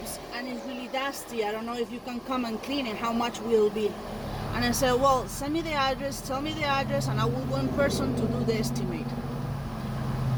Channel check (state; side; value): identical; both; correlation 1.00